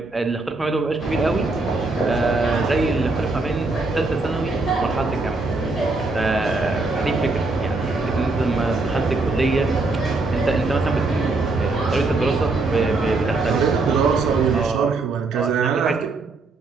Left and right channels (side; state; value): left; quieter; 3.4 dB